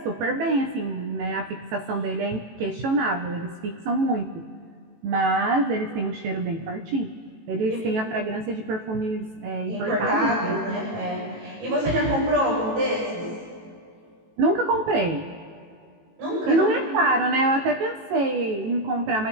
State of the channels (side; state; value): left; late; 18 ms